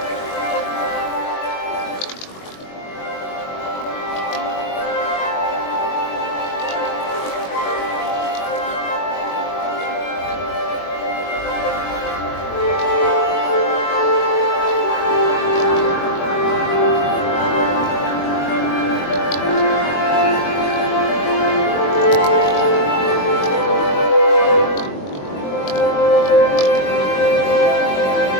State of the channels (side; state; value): right; late; 21 ms